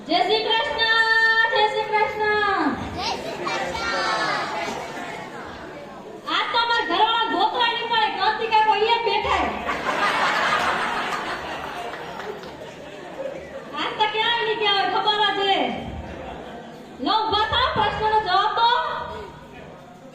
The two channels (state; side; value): identical; both; correlation 1.00